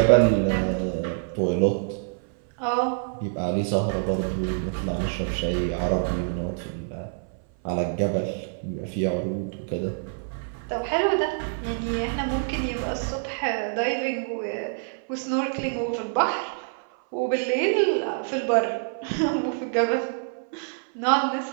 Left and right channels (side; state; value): left; silent; 57 dB below the other